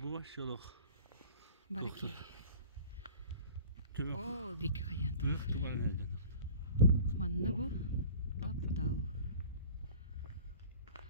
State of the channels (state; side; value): inverted; both; correlation -0.45